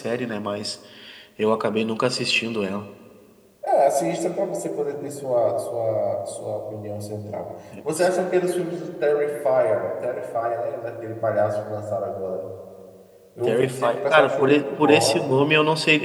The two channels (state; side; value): identical; both; correlation 1.00